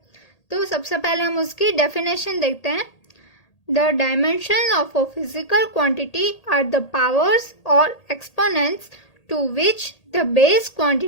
तो सबसे पहले हम उसकी डेफिनेशन देखते हैं। The dimensions of a physical quantity are the powers or exponents to which the base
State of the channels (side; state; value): right; late; 1.8 ms